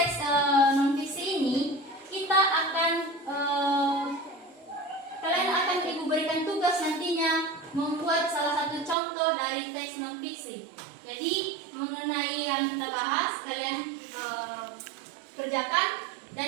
non fiksi ini kita akan kalian akan ibu berikan tugas nantinya membuat salah satu contoh dari teks non fiksi. Jadi mengenai yang kita bahas kalian kerjakan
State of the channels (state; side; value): drops out; left; at 9.0 s